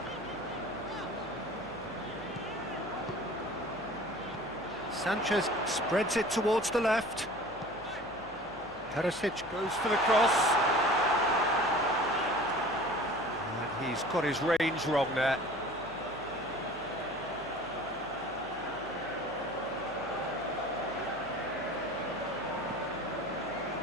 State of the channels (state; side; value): noise; left; hum, 21 dB below the sound